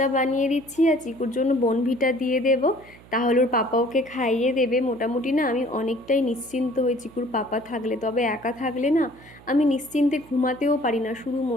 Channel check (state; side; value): noise; right; hum, 23 dB below the sound